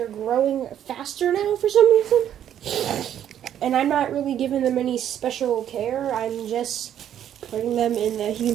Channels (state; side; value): quieter; left; 10.3 dB